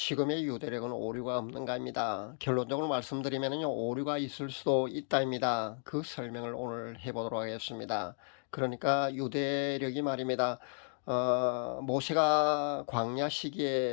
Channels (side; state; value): right; silent; digital silence